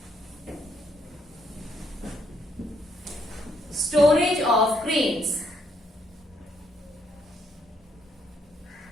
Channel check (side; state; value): both; normal; correlation 0.73